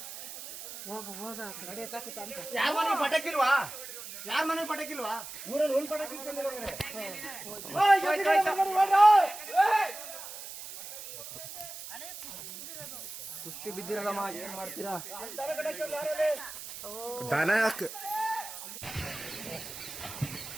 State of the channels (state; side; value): noise; right; hiss, 11 dB below the sound